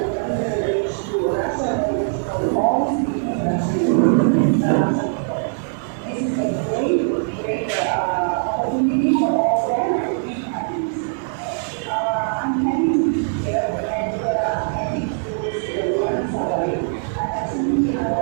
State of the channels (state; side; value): silent; left; digital silence